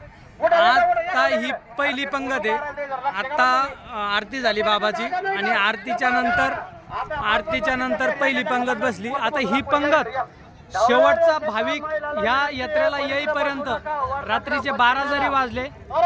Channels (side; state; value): both; identical; correlation 1.00